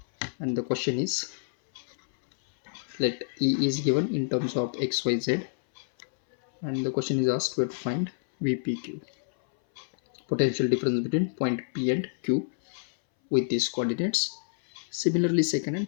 And the question is, let E is given in terms of x, y, z, and the question is asked where to find VPQ, potential difference between point P and Q with these coordinates. Similarly, second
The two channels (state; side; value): silent; right; 59 dB below the other